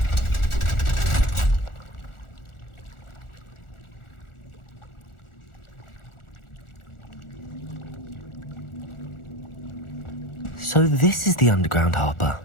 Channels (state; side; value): late; right; 1.4 ms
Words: So this is the underground harbour.